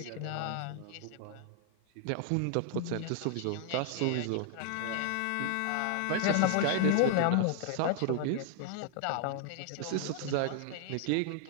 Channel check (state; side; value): different; both; correlation 0.00